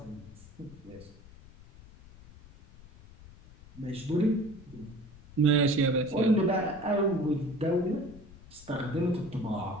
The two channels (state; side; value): noise; left; rumble, 20 dB below the sound